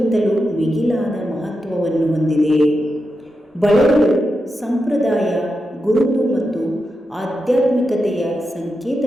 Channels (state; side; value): normal; both; correlation 0.88